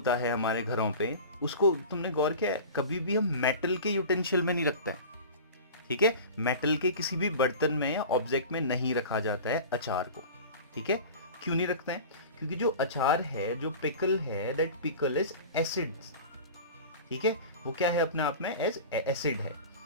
है हमारे घरों पे, उसको तुमने गौर किया है, कभी भी हम मेटल के यूटेंशियल में नहीं रखते हैं. ठीक है, मेटल के किसी भी बर्तन में या ऑब्जेक्ट में नहीं रखा जाता है अचार को. ठीक है, क्यों नहीं रखते हैं? क्योंकि जो अचार है, जो पिकल है, दैट पिकल इज एसिड. ठीक है, वो क्या है अपने आप में? एज एसिड है.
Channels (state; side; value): inverted; both; correlation -0.36